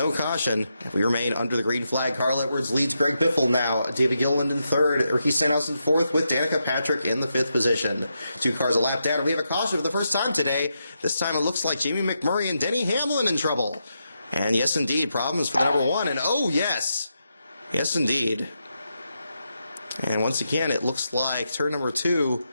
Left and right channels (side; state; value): both; inverted; correlation -0.84